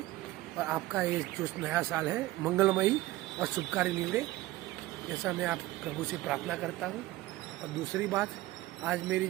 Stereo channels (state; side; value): quieter; left; 17.5 dB